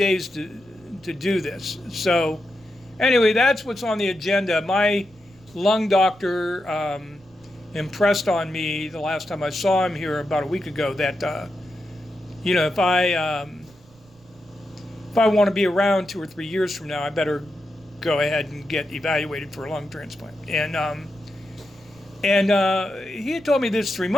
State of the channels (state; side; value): noise; right; rumble, 28 dB below the sound